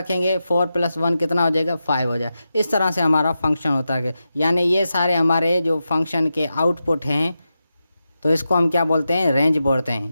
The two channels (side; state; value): both; inverted; correlation -0.90